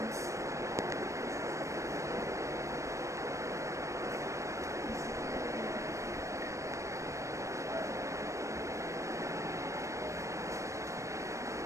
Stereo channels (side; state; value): left; late; 0.15 ms